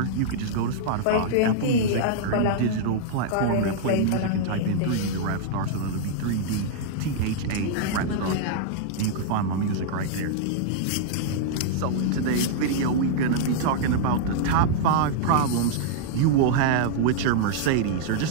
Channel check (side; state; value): both; different; correlation -0.01